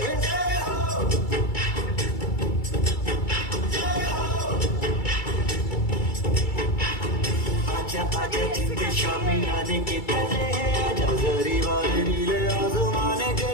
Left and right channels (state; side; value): late; right; 2.3 ms